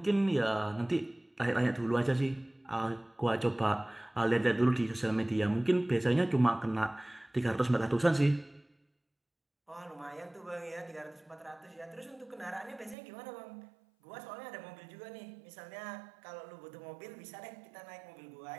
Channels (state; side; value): drops out; left; at 13.0 s